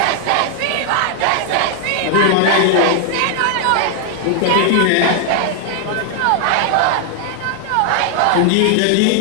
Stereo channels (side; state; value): both; different; correlation 0.00